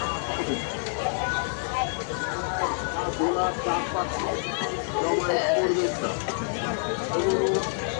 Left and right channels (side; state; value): right; silent; 60 dB below the other